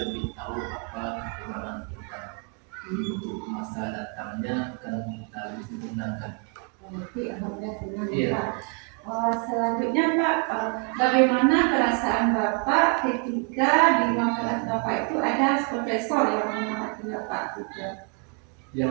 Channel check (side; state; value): left; quieter; 35.9 dB